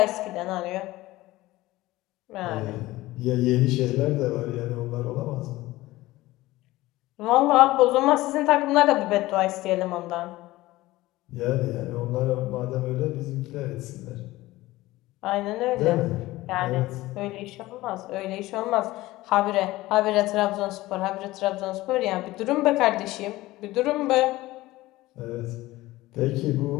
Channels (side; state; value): right; quieter; 18.1 dB